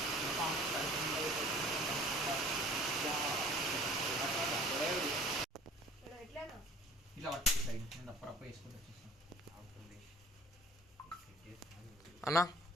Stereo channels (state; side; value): normal; both; correlation 0.50